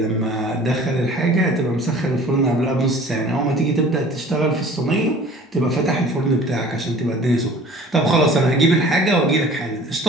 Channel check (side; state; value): both; normal; correlation 0.47